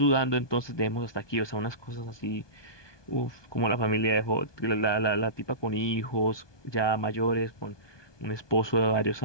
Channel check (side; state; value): right; late; 1.2 ms